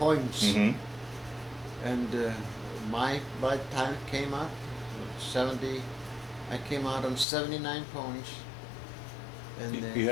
Mm-hmm. And by the time it came out, 70, I came out on 79 points. And You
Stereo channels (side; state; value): right; drops out; at 7.2 s